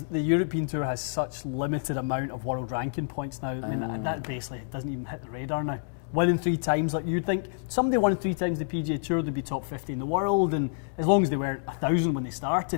the European Tour has such limited amount of world ranking points now. I mean, that basically doesn't even hit the radar now. Winning 3 times, like you'd think somebody won 3 times the PGA Tour, they'd be top 50 in the world, and as long as they weren't 1,000 when they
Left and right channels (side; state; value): right; silent; digital silence